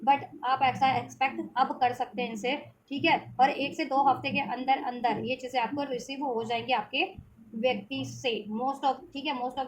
बट आप ऐसा एक्सपेक्ट अब कर सकते हैं इनसे, ठीक है। और 1 से 2 हफ्ते के अंदर अंदर ये चीज़ें आपको रिसीव हो जाएंगी आपके व्यक्ति से, मोस्ट ऑफ, ठीक है, मोस्ट ऑफ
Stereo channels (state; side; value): identical; both; correlation 1.00